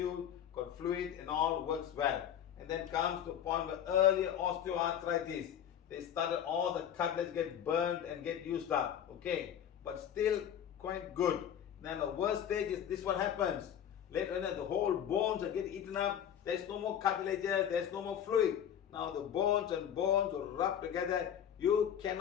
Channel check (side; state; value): right; quieter; 9.5 dB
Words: got fluid and all works well. And then comes to a point where earlier osteoarthritis, they started all the cartilage get burned and get used up. Okay, but still quite good. Then the worst stage is this: what happens later on, the whole bones are getting eaten up. There's no more cartilages, there's no more fluid. Now the bones and bones will rub together. You